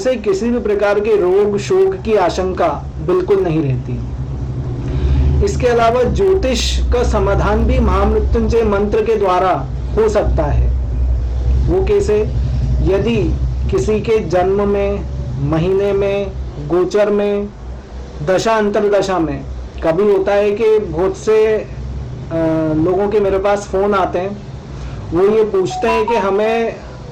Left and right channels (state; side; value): identical; both; correlation 1.00